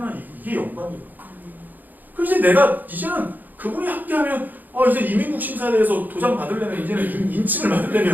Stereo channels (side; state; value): left; late; 0.085 ms